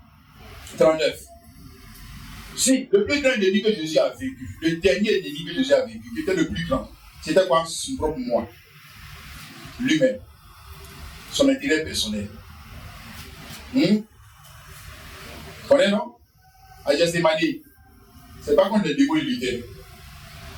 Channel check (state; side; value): identical; both; correlation 1.00